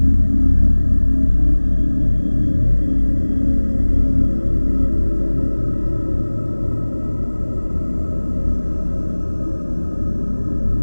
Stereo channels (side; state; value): both; inverted; correlation -1.00